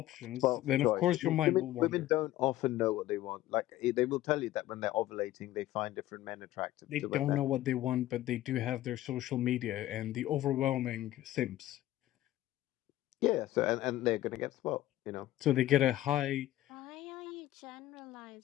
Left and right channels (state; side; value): quieter; right; 14.8 dB